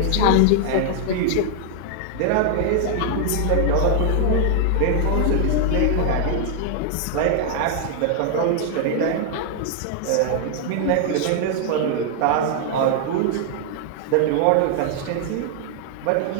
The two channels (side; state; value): both; different; correlation 0.00